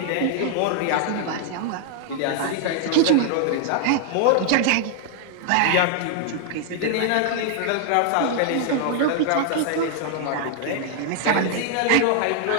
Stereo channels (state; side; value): different; both; correlation 0.00